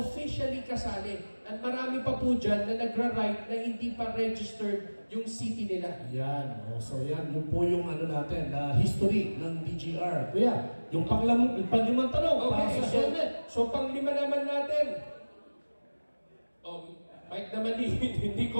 kasali. At marami pa po dyan na nagra-ride na hindi pa registered yung city nila. Yan. Oh, so yan, yun po yung ano natin, history ng DGR. Kuya, yung panglimang tanong, para Okay, sa helmet. so panglima naman natin. Mike naman hindi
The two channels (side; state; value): both; inverted; correlation -1.00